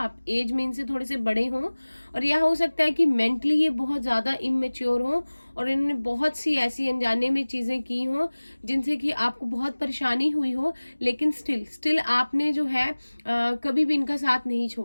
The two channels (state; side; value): inverted; both; correlation -1.00